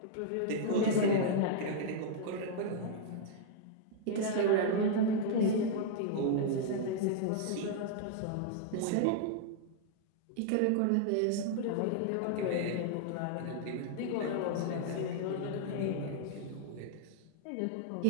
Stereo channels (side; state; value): both; different; correlation -0.01